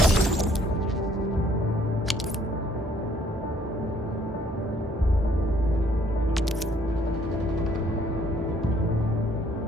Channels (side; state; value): both; normal; correlation 0.63